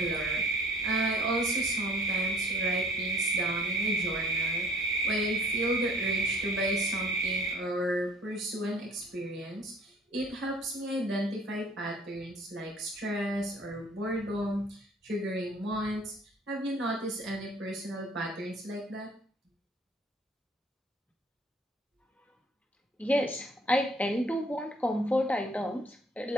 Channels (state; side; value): normal; both; correlation 0.53